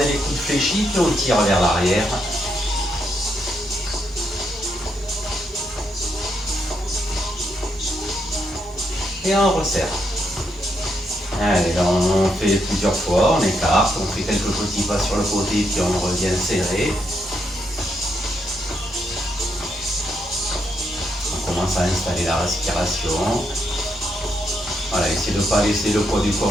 les coudes fléchis, puis on tire vers l'arrière. Et on resserre. Allez, là, on fait plusieurs fois, on écarte, on fait quelques petits pas sur le côté, puis on revient serré. On commence à installer la respiration. Voilà, essayez de ne pas laisser le poids du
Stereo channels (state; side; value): normal; both; correlation 0.79